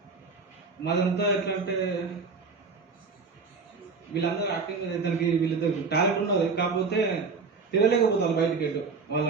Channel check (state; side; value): quieter; left; 4.7 dB